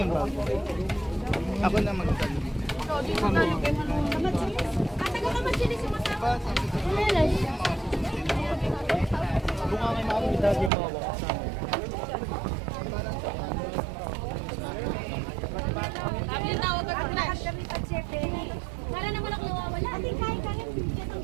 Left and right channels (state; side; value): drops out; left; at 10.7 s